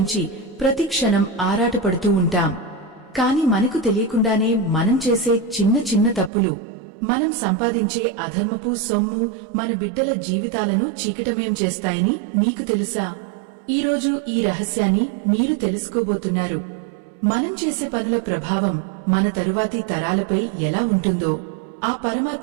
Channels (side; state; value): left; drops out; at 6.3 s